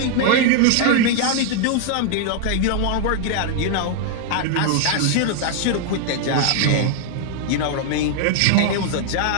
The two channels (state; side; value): different; both; correlation 0.00